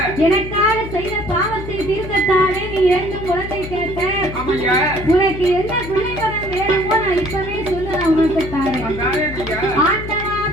எனக்காக செய்த பாவத்தை தீர்க்கத்தானே நீ 2 குழந்தை கேட்ட. உனக்கு என்ன பிள்ளை வரம் வேணுமோ நான் இப்பவே சொல்லு, நான் உனக்கு தாரேன். ஆண்டவா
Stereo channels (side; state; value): left; noise; hum, 10 dB below the sound